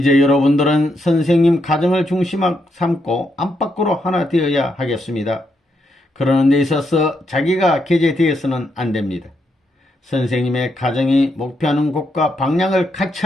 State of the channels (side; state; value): both; normal; correlation 0.79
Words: 여러분들은 선생님 가정을 중심 삼고 안팎으로 하나 되어야 하겠습니다. 그러는 데 있어서 자기가 게재되어서는 안됩니다. 선생님의 가정이 목표하는 곳과 방향을 같이